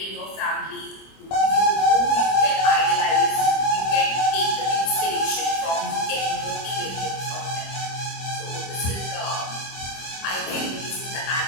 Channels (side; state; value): right; late; 25 ms